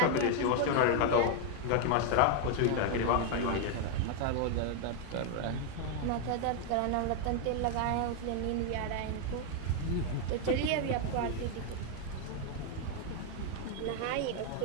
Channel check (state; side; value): different; both; correlation 0.01